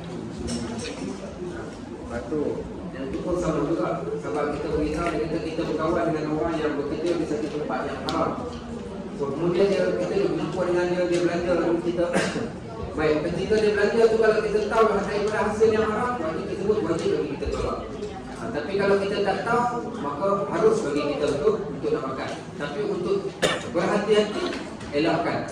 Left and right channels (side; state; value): both; identical; correlation 1.00